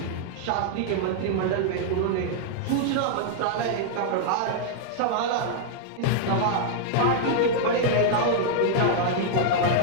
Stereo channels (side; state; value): both; different; correlation -0.01